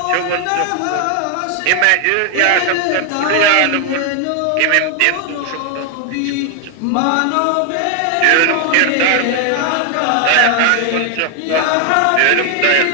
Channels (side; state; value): both; different; correlation 0.00